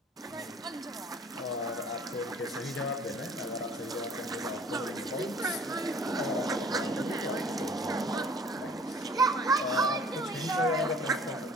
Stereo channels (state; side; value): normal; both; correlation 0.52